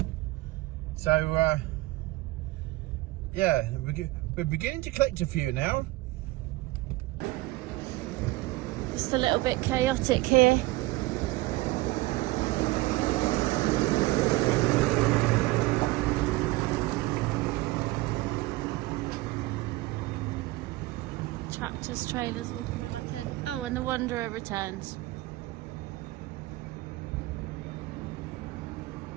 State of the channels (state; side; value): quieter; left; 19.9 dB